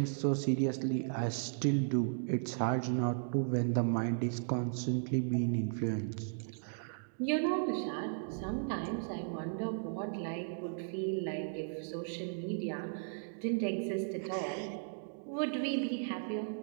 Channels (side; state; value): left; silent; digital silence